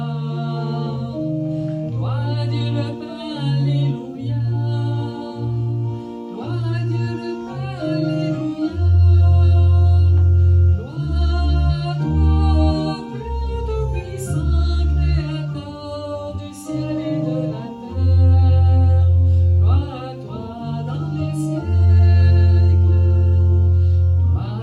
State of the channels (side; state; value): both; identical; correlation 1.00